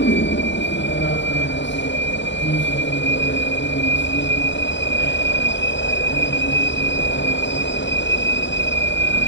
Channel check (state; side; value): late; right; 0.53 ms